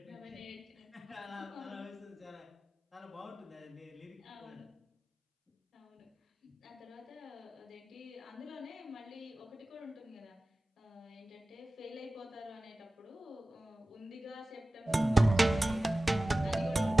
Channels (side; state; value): both; normal; correlation 0.97